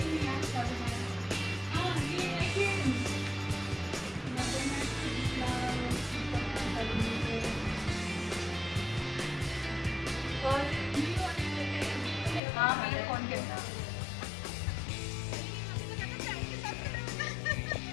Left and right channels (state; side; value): drops out; right; at 12.4 s